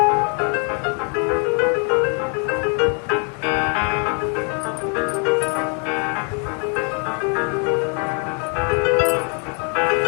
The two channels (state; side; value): quieter; right; 38.8 dB